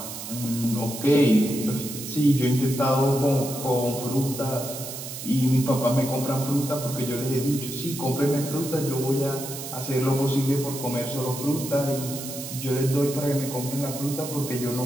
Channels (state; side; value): noise; right; hiss, 9 dB below the sound